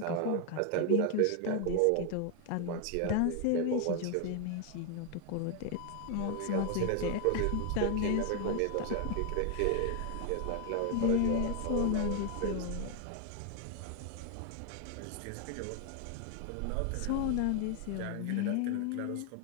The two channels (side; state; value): both; different; correlation 0.00